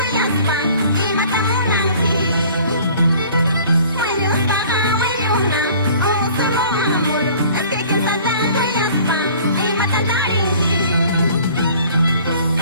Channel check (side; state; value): both; inverted; correlation -0.50